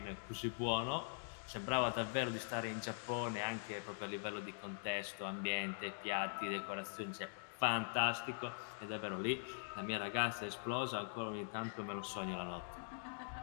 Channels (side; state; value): right; silent; digital silence